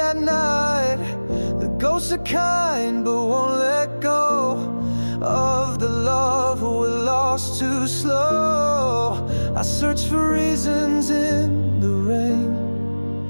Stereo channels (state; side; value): inverted; both; correlation -1.00